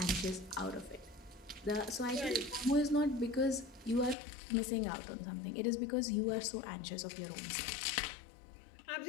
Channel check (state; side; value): drops out; right; at 4.2 s